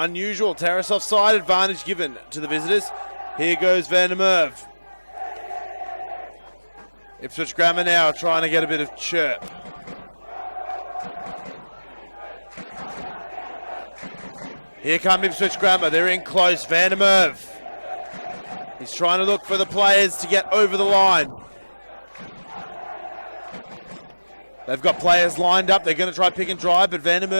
Terrace offside, advantage given to the visitors. Here goes Van der Merwe. Ipswich Grammar now trying to get a bit of chirp. Here come Ipswich Grammar. They're in close. Van der Merwe. He's trying to look for the players to get over the line. They've got players lined up. They're going to try pick and drive, but Van der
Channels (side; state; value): both; inverted; correlation -1.00